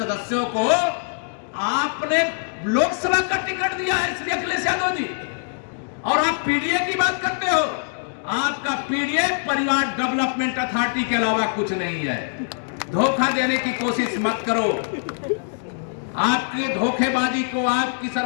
को आपने लोकसभा का टिकट दिया है श्री अखिलेश यादव जी, और आप पीडीए की बात करते हो। आपका पीडीए परिवार डेवलपमेंट अथॉरिटी के अलावा कुछ नहीं है। धोखा देने की कोशिश मत करो। आपकी धोखेबाजी को, आपकी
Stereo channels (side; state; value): right; silent; digital silence